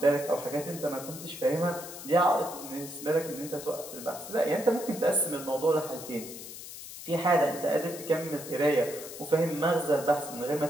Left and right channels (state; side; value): noise; left; hiss, 12 dB below the sound